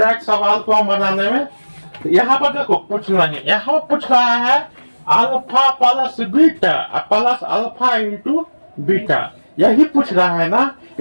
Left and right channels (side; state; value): both; inverted; correlation -1.00